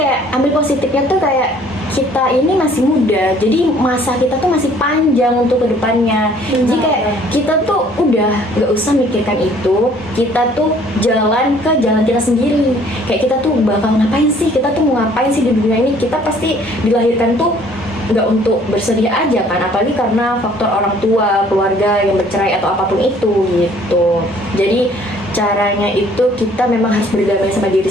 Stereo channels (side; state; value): both; normal; correlation 0.58